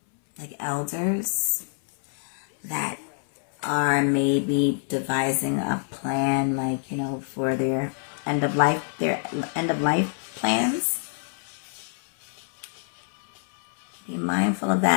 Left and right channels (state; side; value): silent; right; 61 dB below the other